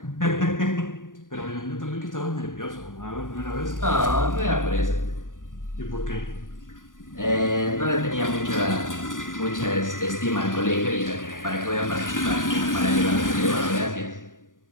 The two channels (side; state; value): right; late; 0.88 ms